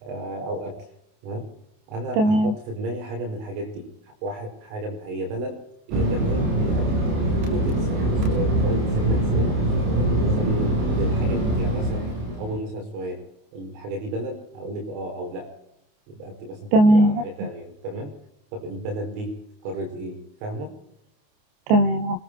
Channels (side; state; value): left; late; 28 ms